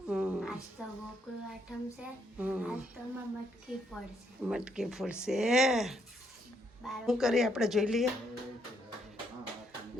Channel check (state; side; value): normal; both; correlation 0.74